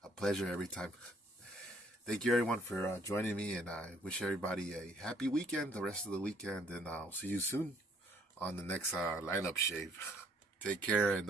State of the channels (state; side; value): normal; both; correlation 0.64